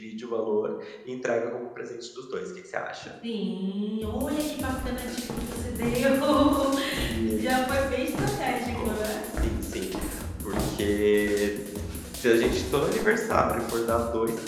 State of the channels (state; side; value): identical; both; correlation 1.00